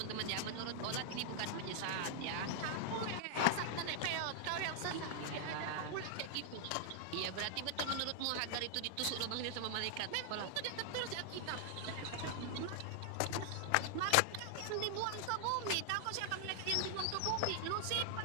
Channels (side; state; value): both; different; correlation -0.01